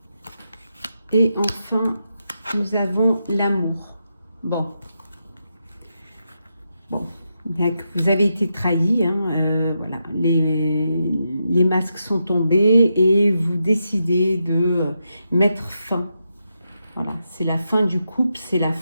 Et enfin, nous avons l'amour. Bon, vous avez été trahi, hein, voilà, les masques sont tombés et vous décidez de mettre fin. Voilà, c'est la fin du couple, c'est la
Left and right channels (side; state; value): both; inverted; correlation -0.85